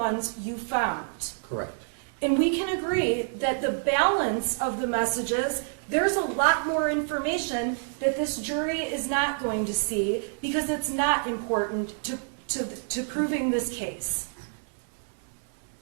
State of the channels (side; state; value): left; silent; digital silence